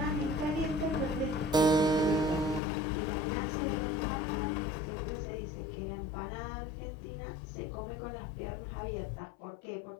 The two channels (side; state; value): right; drops out; at 2.6 s